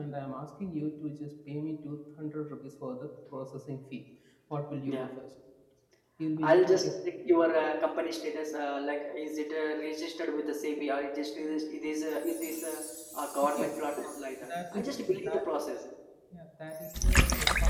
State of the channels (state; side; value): identical; both; correlation 1.00